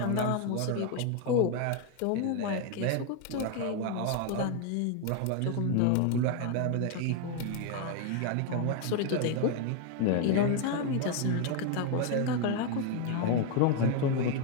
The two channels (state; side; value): different; both; correlation 0.01